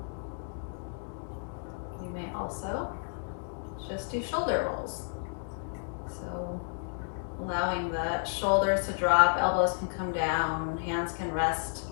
You may also just do shoulder rolls. So allowing the shoulders to drop, elbows can come down, hands can rest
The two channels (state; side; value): silent; right; digital silence